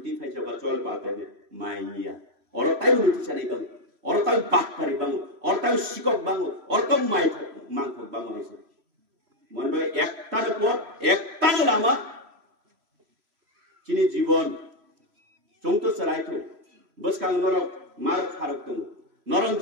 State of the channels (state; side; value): late; left; 3.0 ms